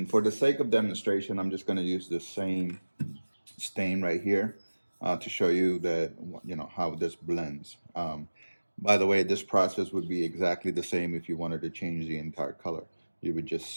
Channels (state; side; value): inverted; both; correlation -1.00